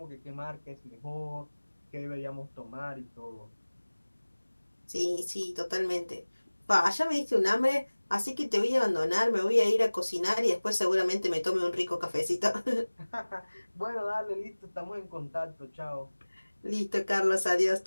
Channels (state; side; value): inverted; both; correlation -1.00